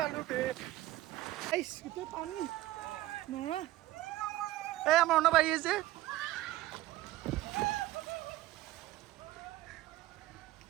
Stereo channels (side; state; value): left; quieter; 16.1 dB